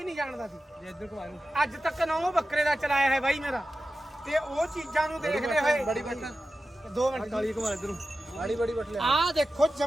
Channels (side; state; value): both; normal; correlation 0.93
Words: ਨਹੀਂ ਜਾਣਦਾ ਸੀ ਅੱਜ ਤੱਕ ਨਾਂ ਬੱਕਰੇ ਦਾ ਚਲਾਇਆ ਹੈ ਬਾਈ ਮੇਰਾ ਤੇ ਉਹ ਚੀਜ਼ਾਂ ਨੂੰ ਦੇਖਦੇ ਹੋਏ ਬੜੀ ਬੱਟ 2 ਮਿੰਟ ਕਾਲੀ ਘੁਮਾ ਇਧਰੋਂ ਬੜੀ ਬੱਟ ਲੈ ਆਹ ਦੇਖੋ